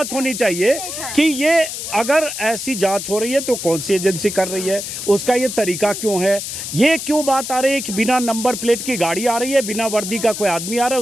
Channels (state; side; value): noise; left; hiss, 6 dB below the sound